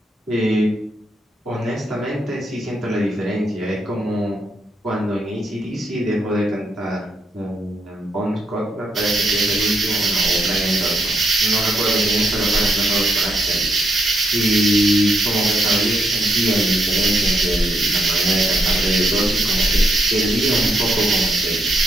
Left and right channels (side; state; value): both; normal; correlation 0.78